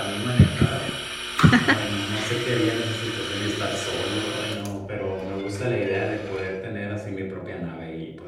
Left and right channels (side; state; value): both; identical; correlation 1.00